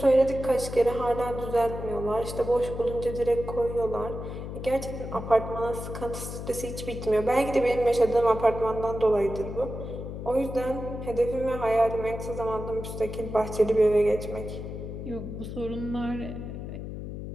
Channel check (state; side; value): noise; left; hum, 8 dB below the sound